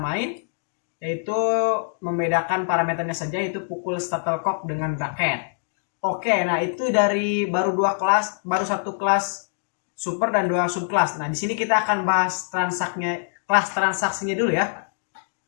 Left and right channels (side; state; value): right; silent; digital silence